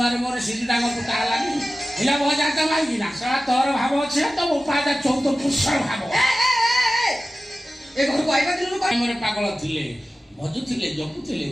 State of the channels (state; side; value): normal; both; correlation 0.95